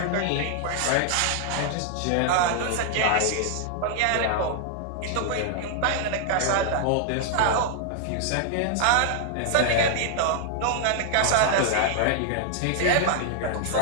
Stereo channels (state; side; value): different; both; correlation 0.00